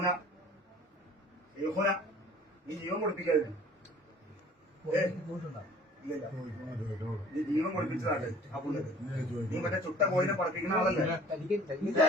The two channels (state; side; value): normal; both; correlation 0.50